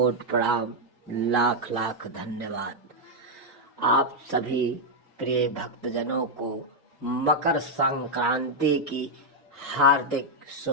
प्रणाम, लाख लाख धन्यवाद। आप सभी प्रिय भक्तजनों को मकर संक्रांति की हार्दिक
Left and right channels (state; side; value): normal; both; correlation -0.01